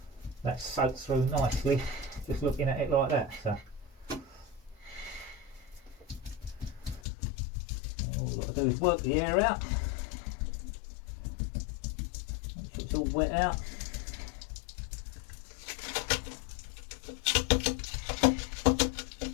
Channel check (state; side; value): drops out; right; at 7.0 s